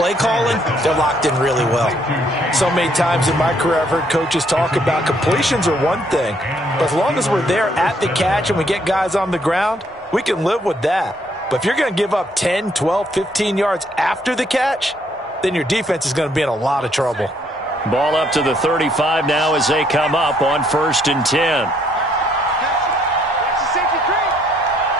calling, they're locked in really well. So many times in my career, I've heard coaches talk about completions are one thing. But as long as we're there at the catch and we get guys on the ground, we can live with that. But if you're going to give up 10, 12, 15 yards after the catch, then your defense is going to be in a lot of trouble. Ball up to the 35 now as they come up on 1st and 10.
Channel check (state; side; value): normal; both; correlation 0.68